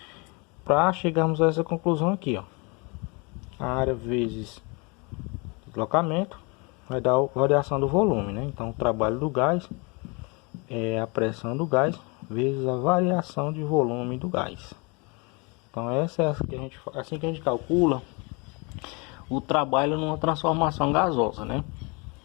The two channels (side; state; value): right; quieter; 30.0 dB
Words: para chegarmos a essa conclusão aqui, ó. A área vezes deslocamento vai dar a variação do volume, né? Então o trabalho do gás é a pressão do gás vezes a variação de volume do gás. Então essa é assim que a gente calcula o trabalho numa transformação gasosa, né?